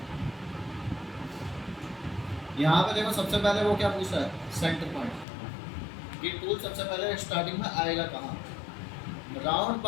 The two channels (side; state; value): right; drops out; at 5.2 s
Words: यहाँ पे देखो सबसे पहले वो क्या पूछता है, सेंटर पॉइंट। ये टूल सबसे पहले स्टार्टिंग में आएगा कहाँ, राउंड